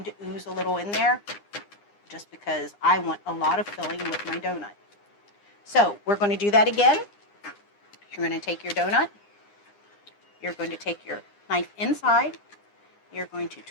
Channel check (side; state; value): right; late; 9.8 ms